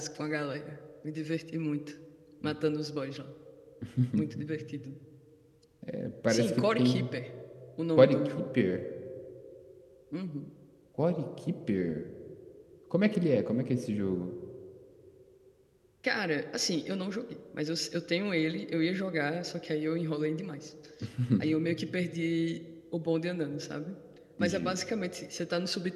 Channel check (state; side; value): identical; both; correlation 1.00